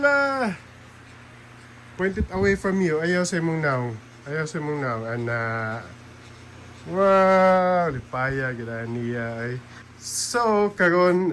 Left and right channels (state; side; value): identical; both; correlation 1.00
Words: Point it away from you. Ayaw sa imong now. Ayaw sa imong now. Wow! Lipaya, gila niya ay. So,